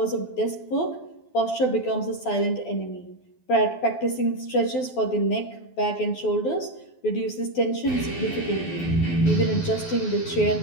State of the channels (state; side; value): late; right; 12 ms